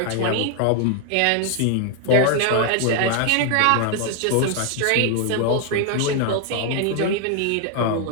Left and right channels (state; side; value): different; both; correlation 0.00